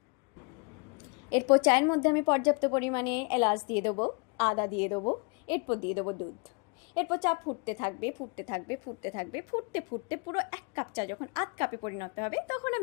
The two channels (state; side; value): quieter; right; 33.2 dB